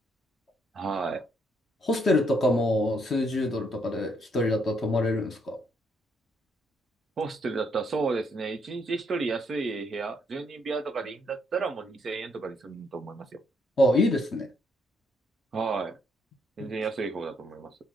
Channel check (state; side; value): normal; both; correlation 0.72